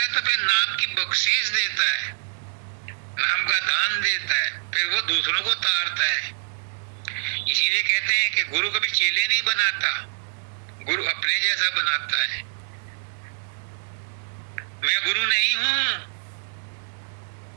तो फिर नाम की बख्शीश देता है, नाम का दान देता है, फिर वो दूसरों को तारता है। इसीलिए कहते हैं कि गुरु कभी चेले नहीं बनाता, गुरु अपने जैसा बनाता है। मैं गुरु नहीं हूं,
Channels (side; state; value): left; silent; digital silence